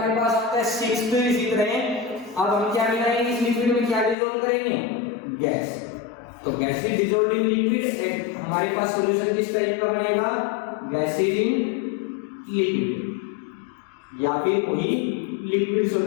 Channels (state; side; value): drops out; right; at 4.2 s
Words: पास आता है सिक्स्थ इसी तरह। अब हम क्या मिलाएंगे इस लिक्विड में, क्या डिसॉल्व करेंगे, गैस। तो gas is dissolved in liquid, हमारे पास सॉल्यूशन किस टाइप का बनेगा, गैस इन लिक्विड या फिर वही लिक्विड